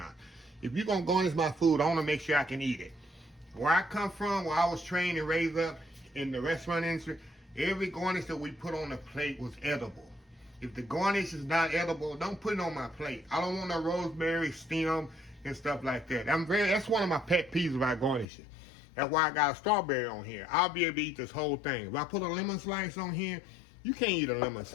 If you're gonna garnish my food, I wanna make sure I can eat it. Where I come from, where I was trained and raised up in the restaurant industry, every garnish that we put on the plate was edible. If the garnish is not edible, don't put it on my plate. I don't want no rosemary, stem, and stuff like that. That's one of my pet peeves about garnishing. That's why I got a strawberry on here. I'll be able to eat this whole thing. If I put a lemon slice on here, you can't eat a lemon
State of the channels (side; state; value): right; drops out; at 18.2 s